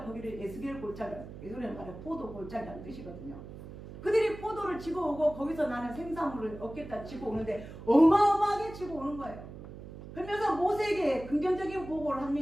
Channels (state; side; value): noise; right; hum, 13 dB below the sound